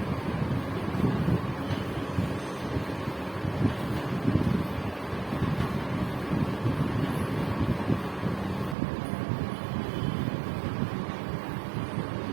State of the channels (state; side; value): drops out; left; at 8.8 s